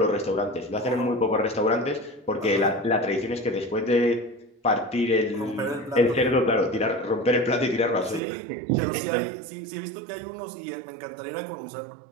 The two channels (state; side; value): drops out; left; at 8.2 s